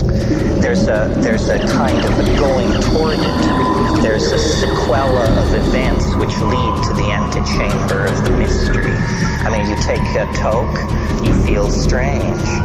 there's a kind of a going toward it. There's a sequela of events which lead to the antechamber of the mystery. You take a toke, you feel strange.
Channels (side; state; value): both; identical; correlation 1.00